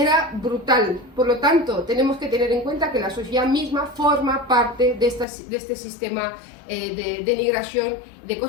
brutal. Por lo tanto, tenemos que tener en cuenta que la sociedad misma forma parte de este sistema de denigración, de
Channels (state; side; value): drops out; right; at 5.2 s